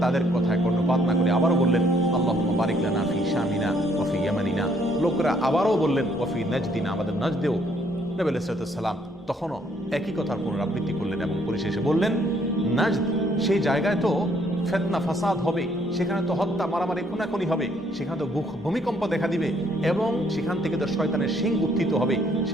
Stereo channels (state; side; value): normal; both; correlation 0.67